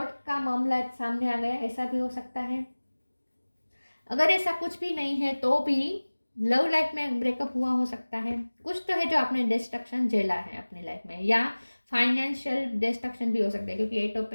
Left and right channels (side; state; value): both; inverted; correlation -1.00